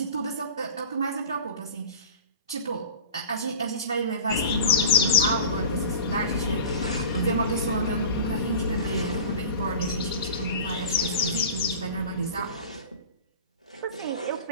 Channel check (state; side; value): inverted; both; correlation -0.38